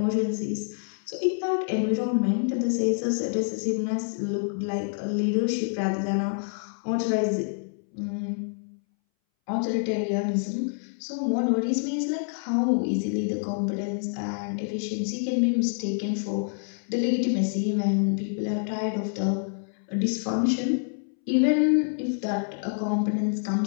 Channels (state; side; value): silent; right; 60 dB below the other